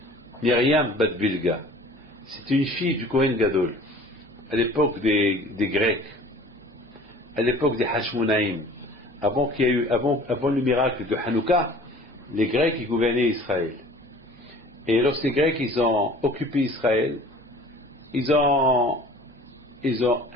Myriam Bat Bilga. C'était une fille du Kohen Gadol, à l'époque des Grecs, à l'époque des Hashmonaïm, avant le miracle de Hanouka, les Grecs ils gouvernaient Israël. Et lorsque les Grecs ils ont occupé Israël, ils ont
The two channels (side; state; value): both; normal; correlation 0.46